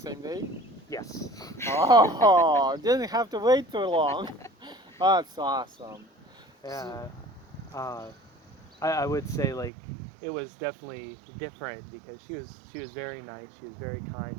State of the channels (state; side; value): drops out; left; at 9.7 s